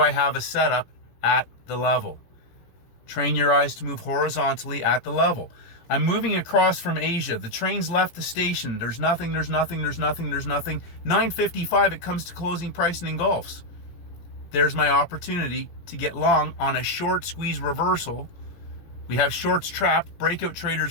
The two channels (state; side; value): late; right; 17 ms